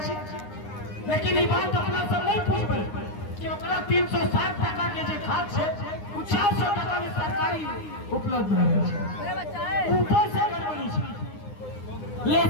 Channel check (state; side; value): late; right; 9.7 ms